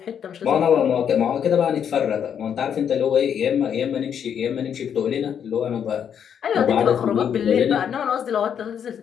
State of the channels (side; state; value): right; quieter; 8.3 dB